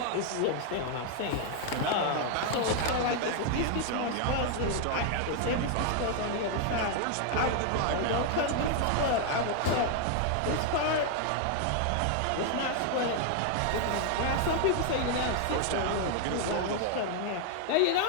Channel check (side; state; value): both; different; correlation 0.00